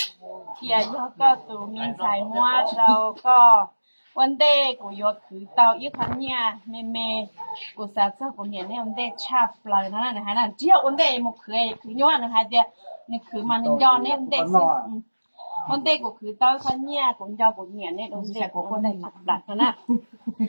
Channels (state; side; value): inverted; both; correlation -1.00